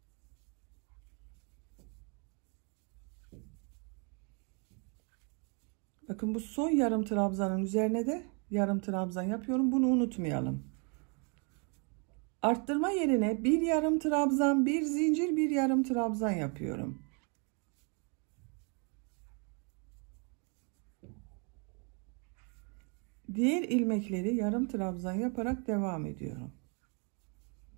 Bakın bu son yarım trabzanın üzerine de yarım trabzan yapıyorum. Bunu unutmayalım. Arttırma yerine bir yarım trabzan, bir zincir, bir yarım trabzan yapıyorum. Diğer ilmekleri yarım trabzan yaparak devam ediyorum.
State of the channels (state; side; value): quieter; left; 36.0 dB